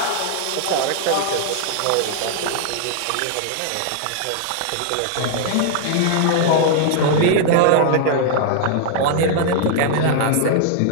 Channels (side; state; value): both; different; correlation -0.01